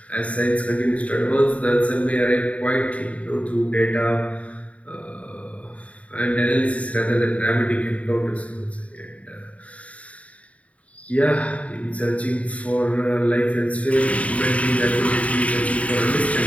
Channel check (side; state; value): right; late; 0.066 ms